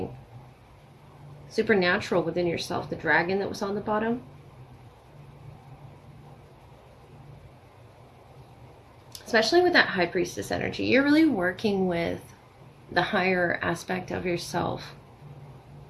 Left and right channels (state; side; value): identical; both; correlation 1.00